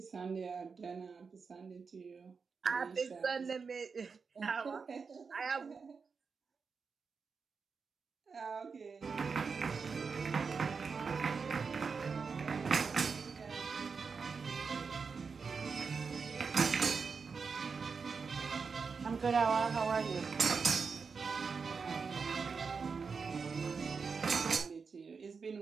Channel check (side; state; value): left; quieter; 5.3 dB